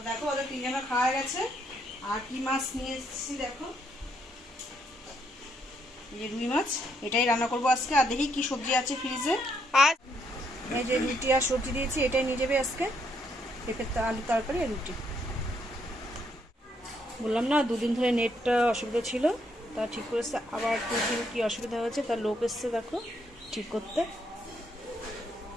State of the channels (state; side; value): normal; both; correlation 0.74